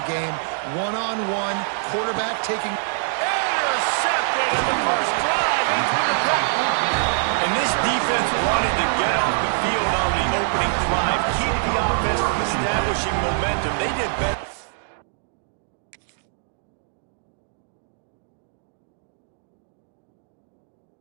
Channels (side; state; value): left; silent; digital silence